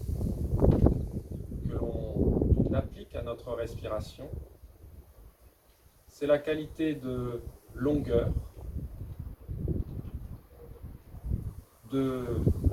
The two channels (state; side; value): identical; both; correlation 1.00